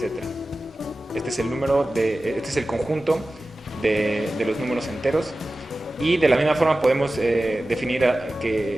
Este es el número este es el conjunto de los números enteros. Y de la misma forma podemos definir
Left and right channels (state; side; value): normal; both; correlation 0.95